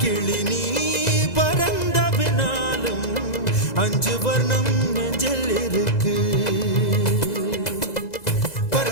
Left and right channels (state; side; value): late; right; 2.0 ms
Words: கிளி நீ பறந்த பின்னாலும் 5 வர்ணம் நெஞ்சில் இருக்கு.